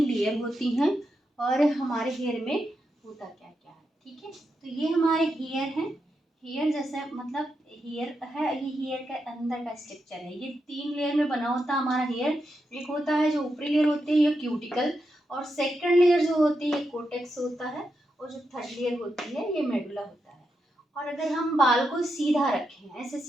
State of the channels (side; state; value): both; normal; correlation 0.85